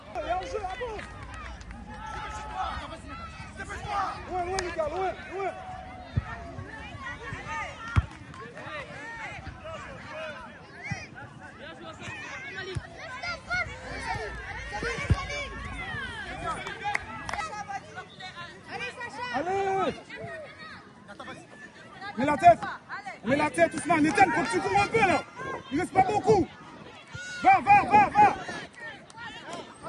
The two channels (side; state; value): both; identical; correlation 1.00